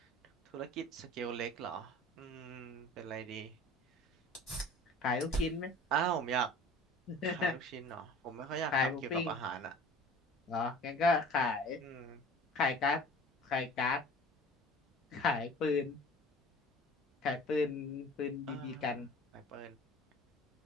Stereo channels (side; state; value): both; normal; correlation 0.44